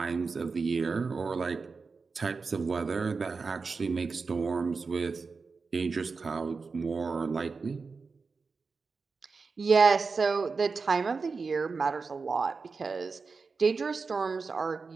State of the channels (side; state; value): left; quieter; 4.6 dB